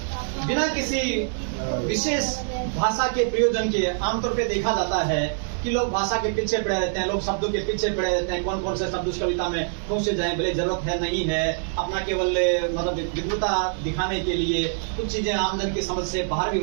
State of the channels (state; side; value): silent; left; digital silence